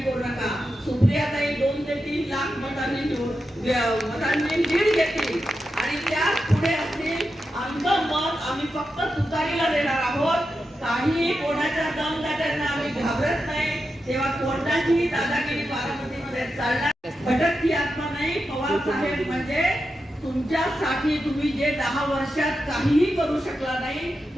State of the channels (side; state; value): both; normal; correlation 0.89